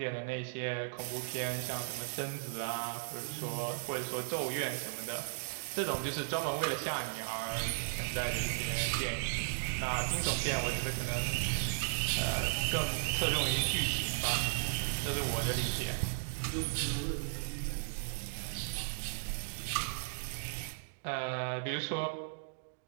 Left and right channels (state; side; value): silent; left; digital silence